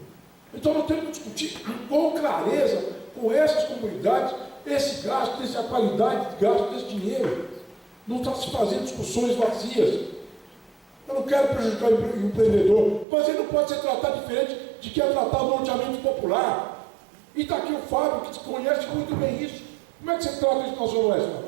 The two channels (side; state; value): left; drops out; at 13.1 s